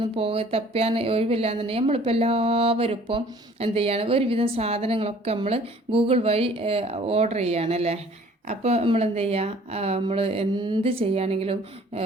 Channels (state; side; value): normal; both; correlation 0.54